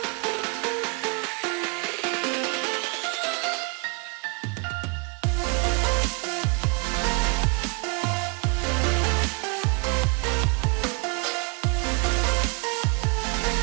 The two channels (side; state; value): left; quieter; 33.3 dB